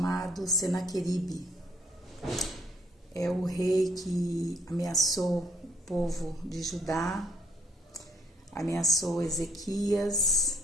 Senaqueribe. É o rei que ameaçou o povo de Judá, ameaçou Ezequias,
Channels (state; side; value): normal; both; correlation 0.68